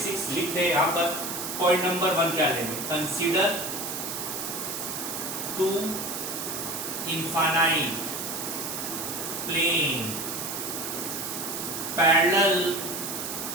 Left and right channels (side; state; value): right; noise; hiss, 5 dB below the sound